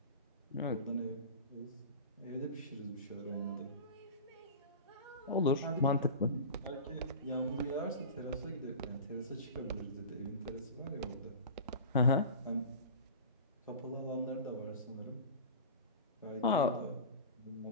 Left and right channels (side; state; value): both; inverted; correlation -0.34